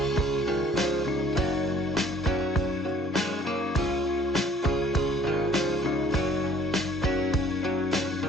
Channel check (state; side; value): normal; both; correlation 0.56